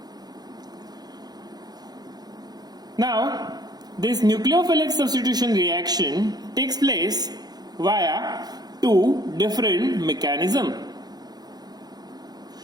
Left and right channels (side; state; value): left; late; 0.19 ms